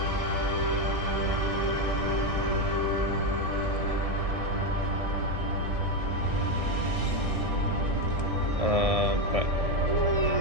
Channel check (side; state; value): left; late; 1.6 ms